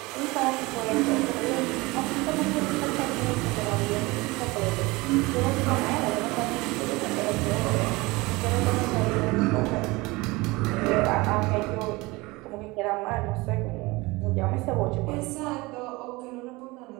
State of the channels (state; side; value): quieter; left; 22.8 dB